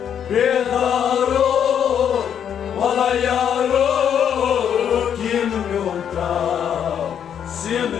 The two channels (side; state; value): right; quieter; 8.7 dB